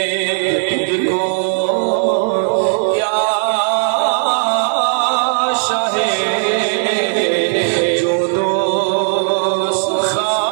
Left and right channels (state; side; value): silent; left; 63 dB below the other